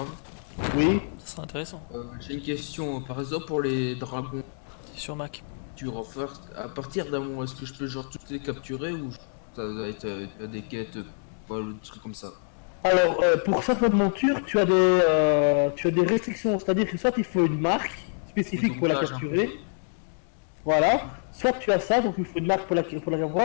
Oui. Ça serait intéressant. J'ai une question, par exemple pour les dragons, C'est sur Mac. tu refais à partir d'un moment, est-ce que je peux genre toutes les capturer ou ça doit être des quêtes, pas le truc comme ça? Alors, pour certaines montures, tu as des restrictions, c'est-à-dire que soit il faut une marque spécifique pour la capturer, voilà, soit tu as ça, donc il faut une marque pour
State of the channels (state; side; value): silent; right; digital silence